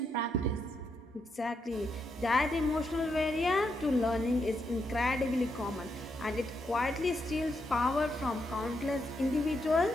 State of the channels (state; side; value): normal; both; correlation 0.81